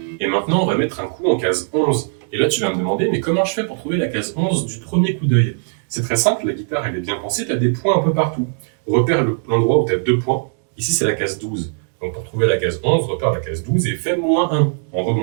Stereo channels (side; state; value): left; silent; 65 dB below the other